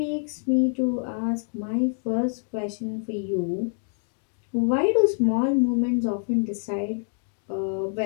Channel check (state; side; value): silent; right; 61 dB below the other